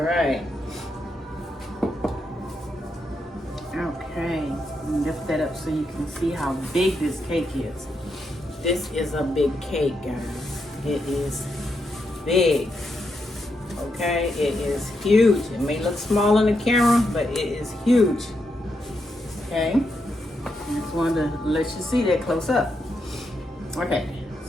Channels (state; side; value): normal; both; correlation 0.82